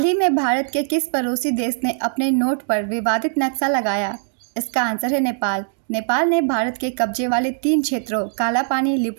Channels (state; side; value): silent; left; digital silence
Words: ही में भारत के किस पड़ोसी देश ने अपने नोट पर विवादित नक्शा लगाया? इसका आंसर है नेपाल। नेपाल ने भारत के कब्जे वाले 3 क्षेत्रों कालापानी,